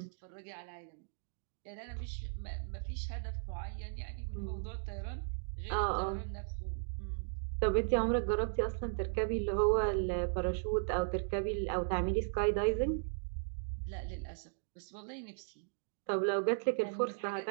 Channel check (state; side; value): silent; left; digital silence